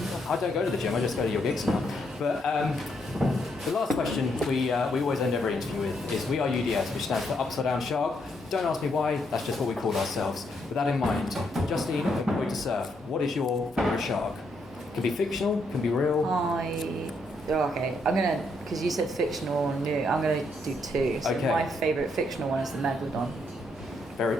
I don't go to the gym, I just go to your gigs now. But the last question we always end every interview with is, we are UDS, which stands for Upside Down Shark. Don't ask me why, that's just what we call ourselves. With that in mind, Justine, Employed to Serve, what is your favourite shark? Can be fictional, can be real. Okay, I'm gonna, because you said fictional or new, I'm gonna do two. So my favourite fictional one is the Megalodon.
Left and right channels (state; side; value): normal; both; correlation 0.76